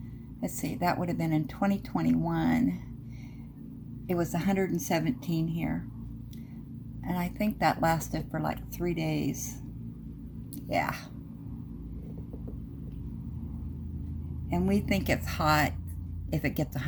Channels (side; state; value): both; identical; correlation 1.00